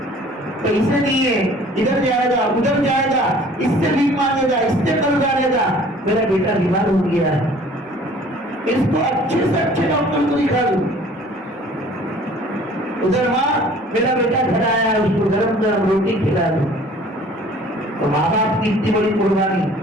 پیسے نہیں ہے، ادھر جائے گا ادھر جائے گا، اس سے بھی مانگے گا، اس سے قرض آئے گا. میرا بیٹا بیمار ہو گیا ہے، اس کو اچھے سے اچھے ڈاکٹر کو دکھا دوں. ادھر ماں میرا بیٹا گھر آیا ہے، اس کو گرم گرم روٹی کھلا دوں. تو ماں باپ کی اتنی بڑی قربانی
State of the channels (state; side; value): normal; both; correlation 0.51